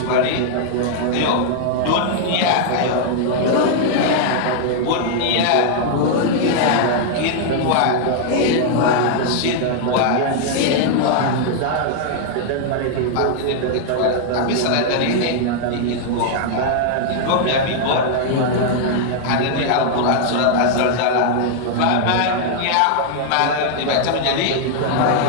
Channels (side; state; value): both; different; correlation -0.01